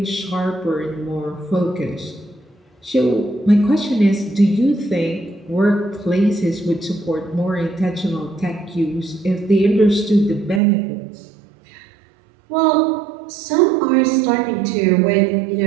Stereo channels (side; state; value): left; drops out; at 10.6 s